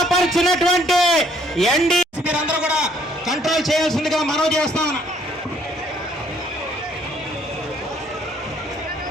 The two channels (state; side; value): normal; both; correlation 0.64